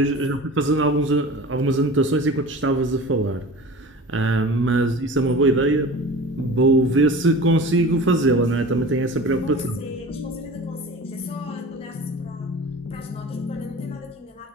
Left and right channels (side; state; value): both; normal; correlation 0.37